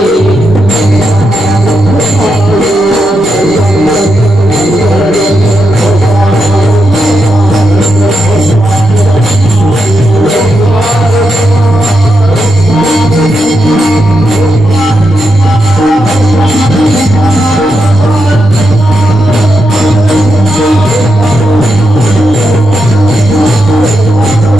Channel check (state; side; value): normal; both; correlation 0.84